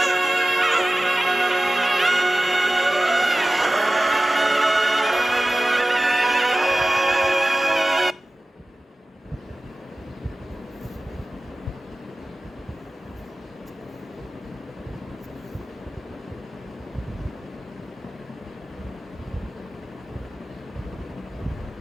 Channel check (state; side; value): normal; both; correlation 0.96